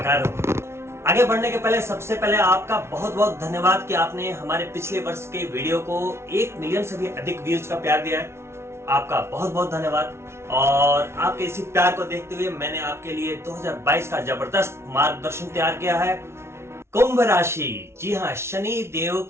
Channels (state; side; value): late; left; 0.13 ms